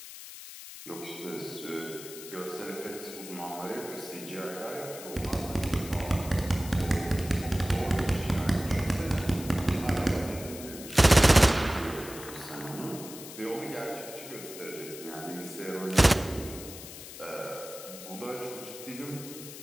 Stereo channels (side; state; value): left; noise; hiss, 13 dB below the sound